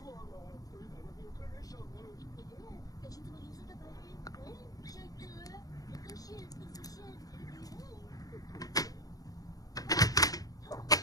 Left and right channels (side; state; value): right; late; 0.18 ms